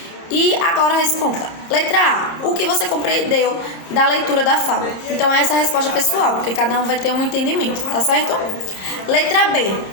E agora responda. Letra A. O que você compreendeu da leitura da fábula? Então, essa é a resposta pessoal, porque cada um vai ter um entendimento, tá certo? Letra B.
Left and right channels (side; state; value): right; late; 31 ms